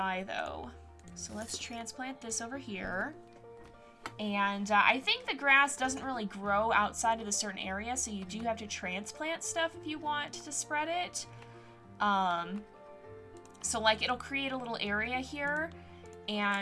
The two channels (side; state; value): both; identical; correlation 1.00